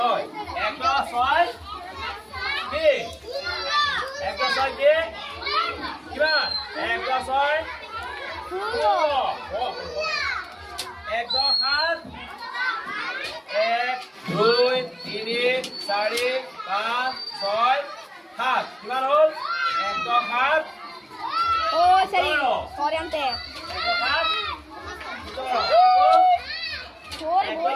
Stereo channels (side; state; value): both; identical; correlation 1.00